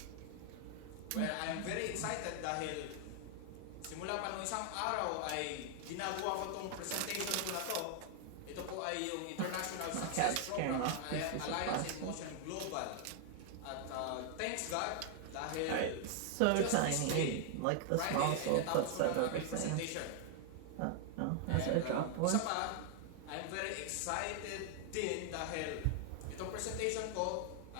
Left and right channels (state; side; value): different; both; correlation 0.00